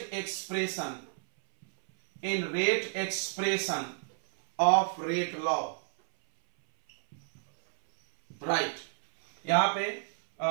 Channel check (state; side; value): silent; left; 58 dB below the other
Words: expression of rate law, right? यहां पे